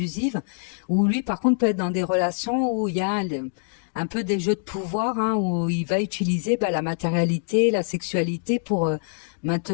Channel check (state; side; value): silent; right; digital silence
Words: ou lui par contre peut être dans des relations où il y a un peu des jeux de pouvoir, hein, où il va utiliser la matérialité, la sexualité pour